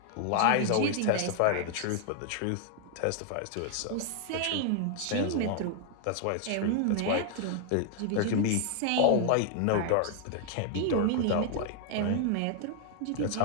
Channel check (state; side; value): different; both; correlation 0.00